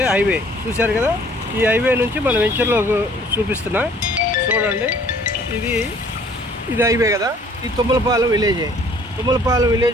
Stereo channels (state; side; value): normal; both; correlation 0.56